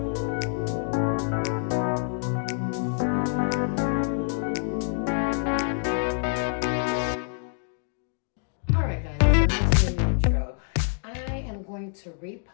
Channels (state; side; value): silent; right; 61 dB below the other